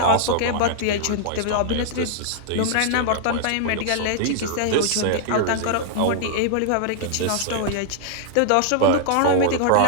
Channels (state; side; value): different; both; correlation -0.01